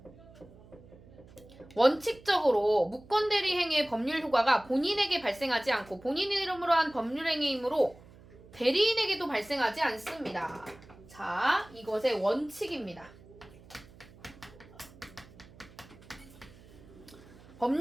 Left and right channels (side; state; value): right; noise; hum, 22 dB below the sound